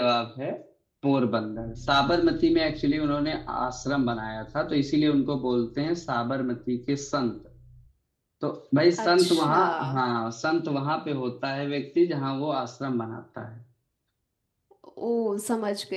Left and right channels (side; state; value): both; identical; correlation 1.00